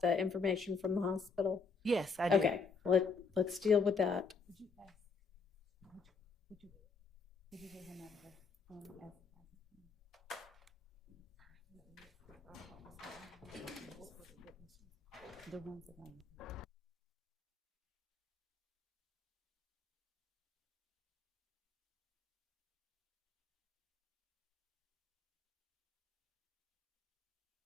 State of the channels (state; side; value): quieter; right; 4.7 dB